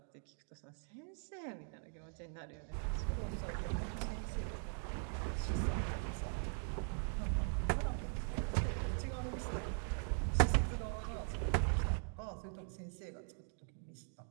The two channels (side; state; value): left; silent; 50 dB below the other